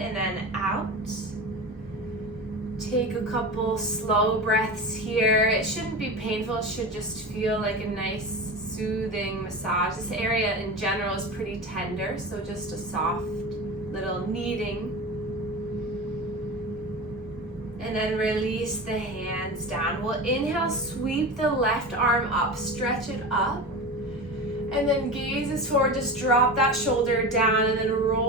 then out. Take a couple slow breaths here. It shouldn't be painful, it should just feel like a nice soothing massage. This area in general is pretty tender, so just a soft little kneading. And then release the hands down. We'll inhale, sweep the left arm up, stretch it up. And then gaze is forward, just drop that shoulder down and then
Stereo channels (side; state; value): both; normal; correlation 0.28